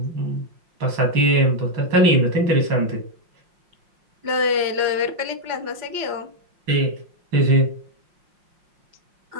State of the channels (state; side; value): late; left; 5.6 ms